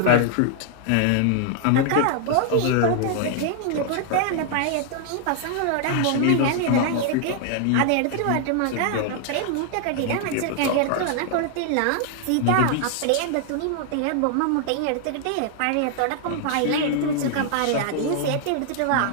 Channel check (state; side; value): different; both; correlation 0.00